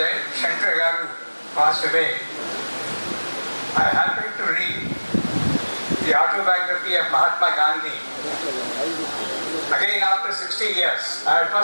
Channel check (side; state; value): both; inverted; correlation -1.00